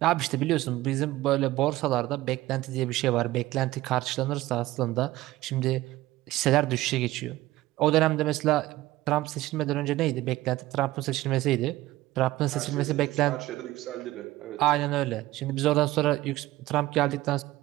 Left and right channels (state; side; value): quieter; left; 17.1 dB